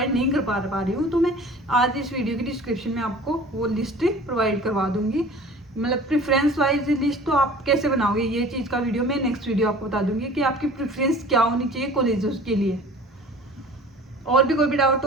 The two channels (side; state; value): both; normal; correlation 0.44